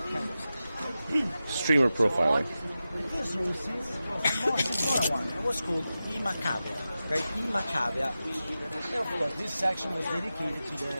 Streamer profiling. This room is the smaller one. It was called Imacavia. Okay, Imacavia. And of course, this section was dedicated to the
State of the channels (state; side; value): inverted; both; correlation -0.93